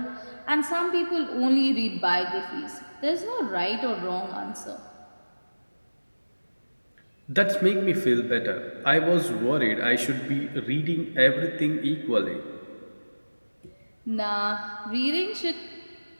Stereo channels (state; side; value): inverted; both; correlation -1.00